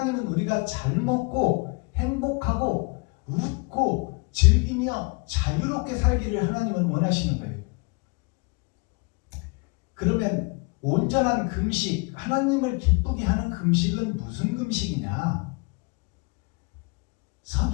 우리가 잘 먹고 행복하고 웃고 즐기며 자유롭게 살기를 하나님은 원하시는 거예요. 그러면 온전한 금식, 하나님을 기쁘게 하는 금식은 무슨 금식이냐?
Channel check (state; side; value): quieter; right; 30.9 dB